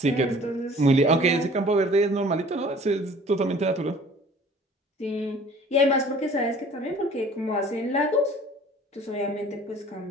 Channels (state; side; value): normal; both; correlation 0.50